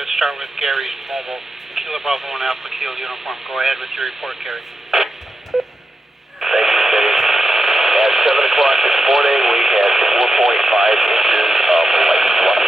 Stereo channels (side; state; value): both; normal; correlation 0.88